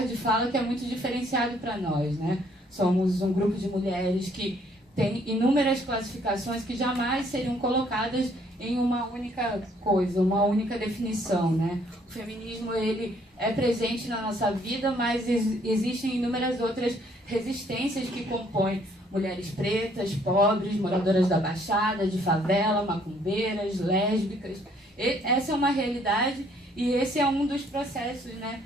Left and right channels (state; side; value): normal; both; correlation 0.64